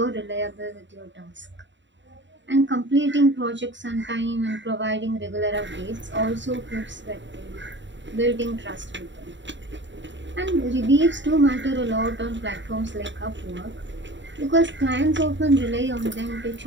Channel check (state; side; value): late; left; 0.54 ms